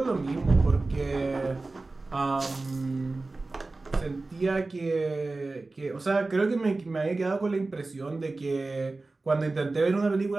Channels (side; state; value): left; quieter; 3.4 dB